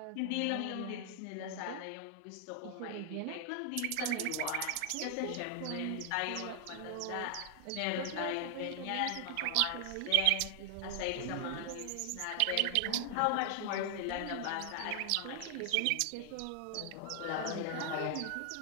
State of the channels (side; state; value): both; different; correlation 0.00